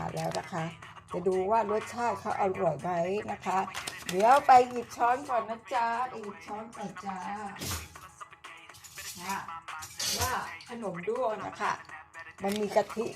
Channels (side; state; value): both; identical; correlation 1.00